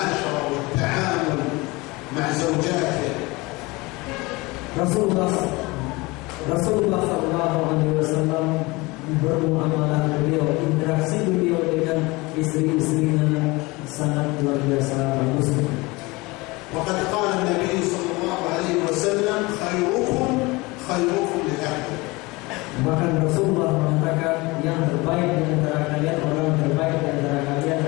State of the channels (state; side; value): quieter; right; 23.5 dB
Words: والتعامل مع زوجاته. Rasulullah SAW bermuamalah beliau, interaksi beliau dengan istri-istrinya sangat luar biasa bagus. وقد قال النبي صلى الله عليه وسلم خيركم خيركم لأهله. Bahkan Rasulullah mengatakan yang terbaik di antara kalian, orang terbaik di antara kalian